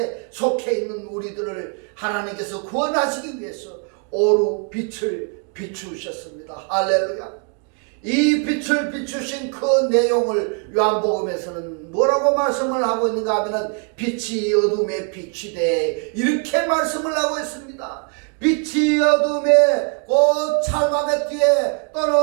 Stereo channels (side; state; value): left; quieter; 39.7 dB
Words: 속해 있는 우리들을 하나님께서 구원하시기 위해서 오루 빛을 비추셨습니다. 할렐루야. 이 빛을 비추신 그 내용을 요한복음에서는 뭐라고 말씀을 하고 있는가 하면 빛이 어둠에 비치되, 이렇게 말씀을 하고 있습니다. 빛이 어둠에 곧 찰마베트에